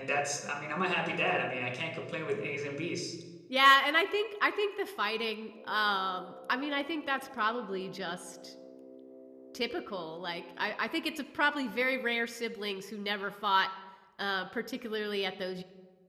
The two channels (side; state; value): both; identical; correlation 1.00